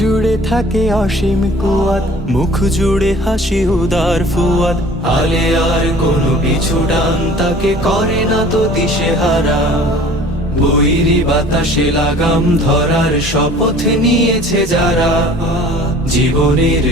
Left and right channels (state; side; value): normal; both; correlation 0.48